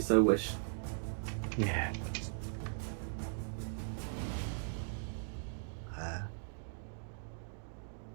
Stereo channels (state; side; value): silent; left; digital silence